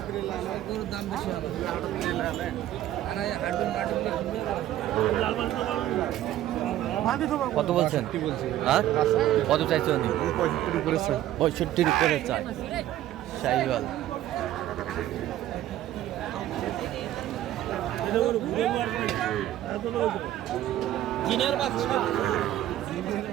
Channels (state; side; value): quieter; left; 13.2 dB